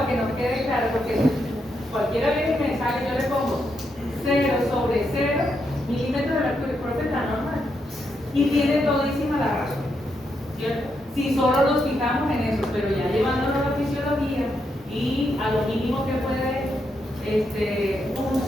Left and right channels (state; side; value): normal; both; correlation 0.81